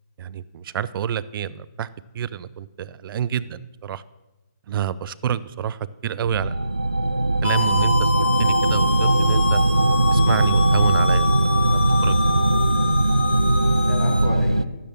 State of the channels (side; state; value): both; inverted; correlation -0.81